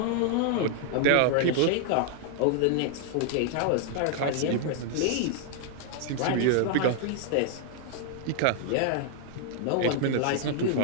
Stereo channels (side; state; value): both; different; correlation 0.00